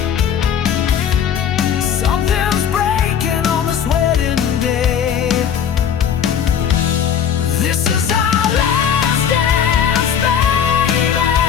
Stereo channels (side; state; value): right; quieter; 8.3 dB